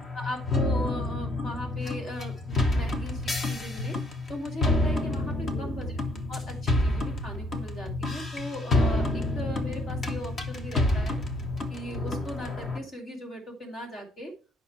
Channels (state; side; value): normal; both; correlation 0.66